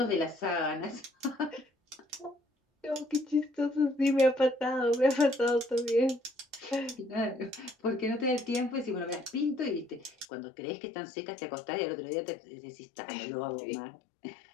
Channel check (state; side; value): drops out; right; at 10.2 s